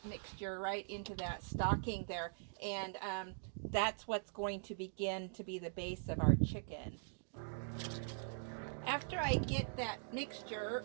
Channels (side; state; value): left; silent; digital silence